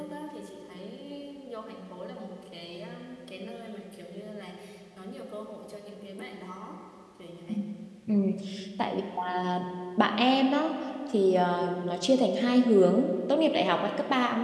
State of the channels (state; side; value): identical; both; correlation 1.00